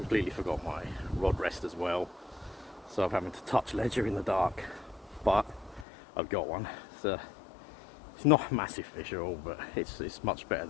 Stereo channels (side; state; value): right; drops out; at 5.9 s